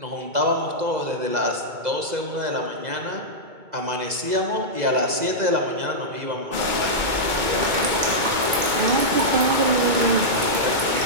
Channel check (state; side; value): late; left; 2.2 ms